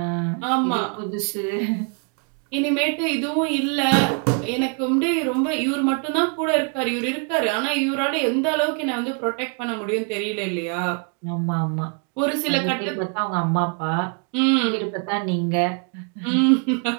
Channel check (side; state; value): left; quieter; 37.5 dB